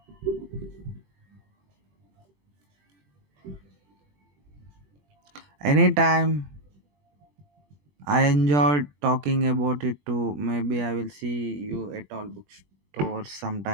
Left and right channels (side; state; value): left; late; 20 ms